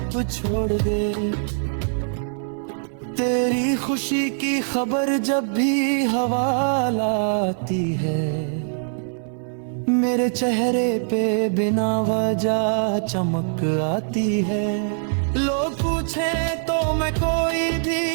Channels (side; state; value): left; silent; 62 dB below the other